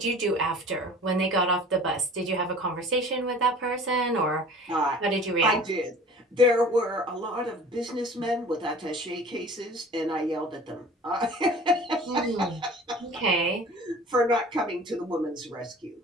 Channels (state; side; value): normal; both; correlation 0.44